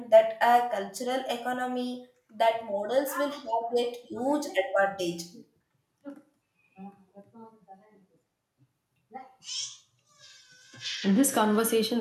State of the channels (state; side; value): identical; both; correlation 1.00